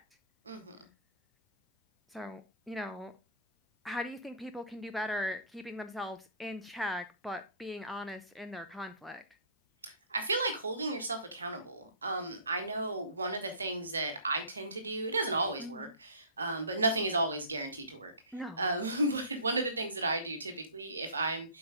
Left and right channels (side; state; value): both; inverted; correlation -0.44